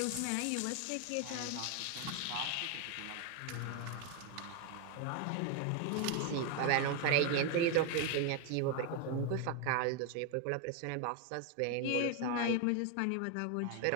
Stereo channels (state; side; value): different; both; correlation 0.01